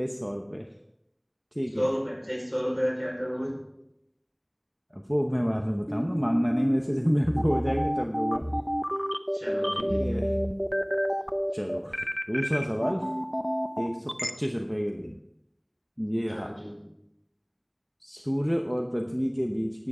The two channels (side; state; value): both; identical; correlation 1.00